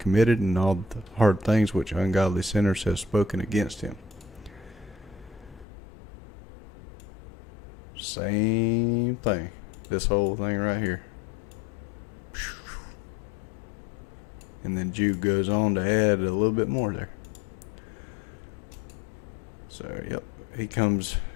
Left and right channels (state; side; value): drops out; right; at 5.7 s